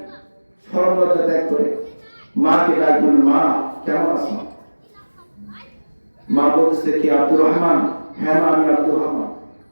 সরলতা ত্যাগ করে মাকে ডাকবেন, মা কেমন আছো? মা বলতেছে, কি আব্দুর রহমান? হ্যাঁ মা, আমি আব্দুর রহমান।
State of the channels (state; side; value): inverted; both; correlation -1.00